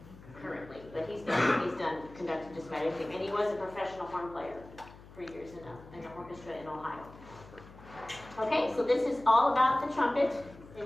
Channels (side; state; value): left; noise; hum, 19 dB below the sound